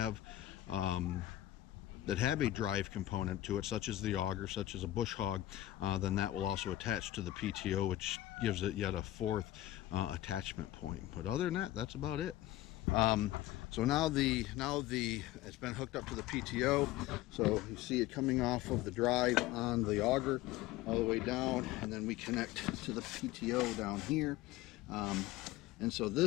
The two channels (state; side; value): quieter; right; 15.1 dB